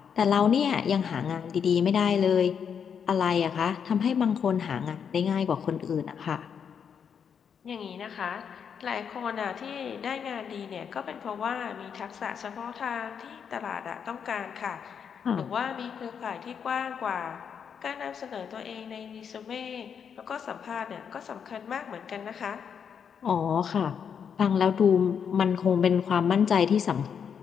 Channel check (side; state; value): right; quieter; 7.3 dB